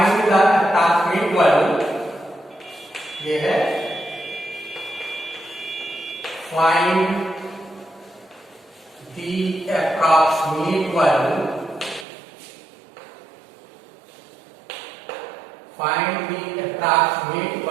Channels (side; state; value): left; drops out; at 12.1 s